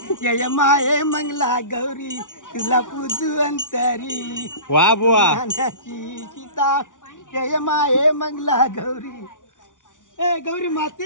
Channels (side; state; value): right; late; 0.87 ms